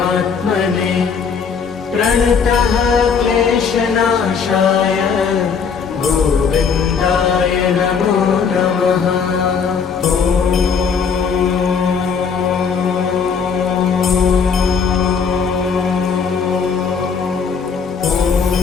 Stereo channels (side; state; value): right; quieter; 6.0 dB